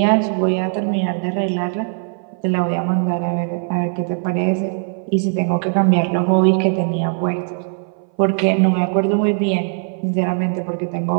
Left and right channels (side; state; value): left; silent; 58 dB below the other